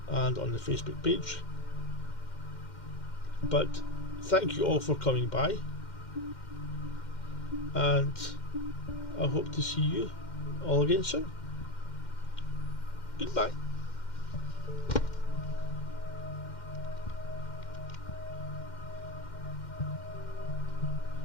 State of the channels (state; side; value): late; right; 2.1 ms